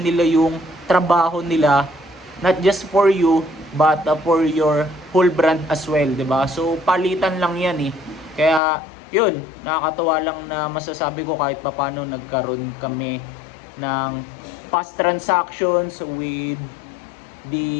nila yung trabaho nila, not just for you, but for your whole brand as well, 'di ba? So, palitan lang yan eh. Kaya, yun, nakakatawa lang na masasabi ko kahit papaano nagkaroon kami ng fast transactions with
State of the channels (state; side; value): drops out; right; at 8.6 s